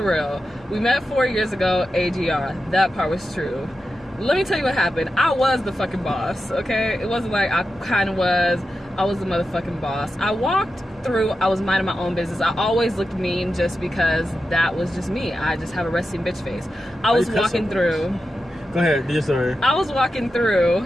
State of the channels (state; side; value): normal; both; correlation 0.91